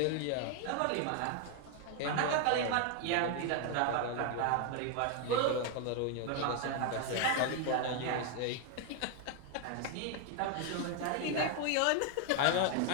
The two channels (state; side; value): different; both; correlation 0.01